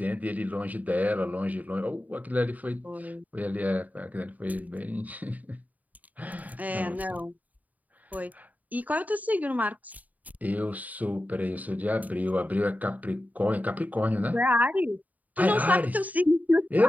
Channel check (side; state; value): left; late; 0.076 ms